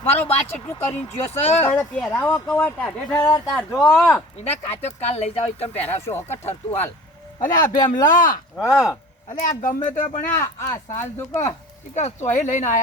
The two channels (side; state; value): both; normal; correlation 0.42